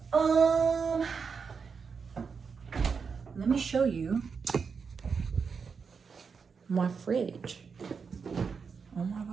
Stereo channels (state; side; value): quieter; left; 5.6 dB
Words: Let me show you my fridge. Oh my